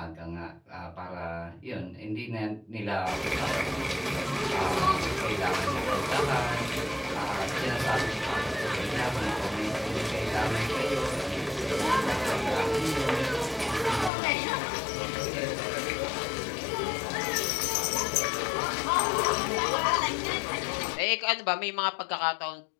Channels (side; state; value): right; drops out; at 14.1 s